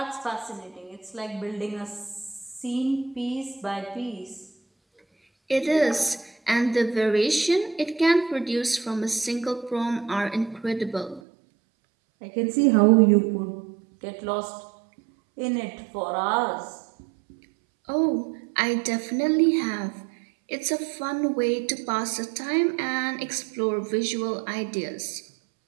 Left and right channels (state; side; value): drops out; left; at 11.2 s